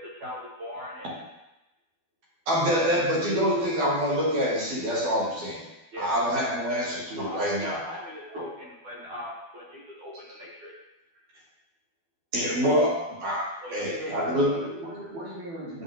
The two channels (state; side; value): late; left; 12 ms